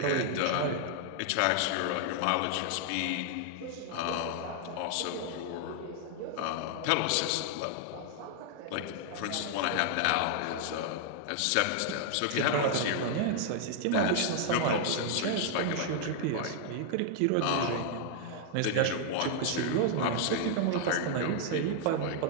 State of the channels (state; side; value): different; both; correlation 0.00